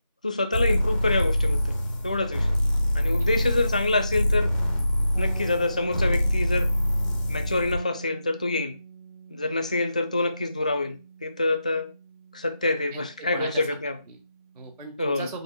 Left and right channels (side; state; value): both; inverted; correlation -0.87